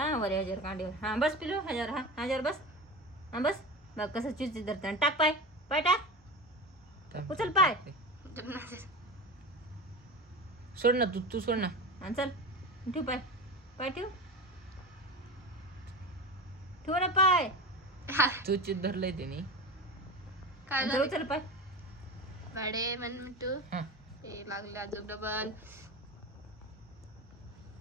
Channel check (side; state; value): both; normal; correlation 0.27